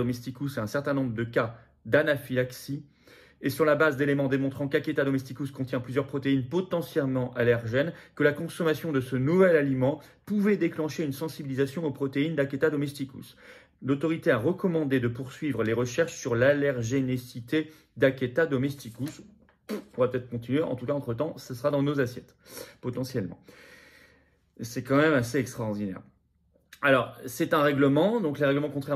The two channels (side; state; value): both; identical; correlation 1.00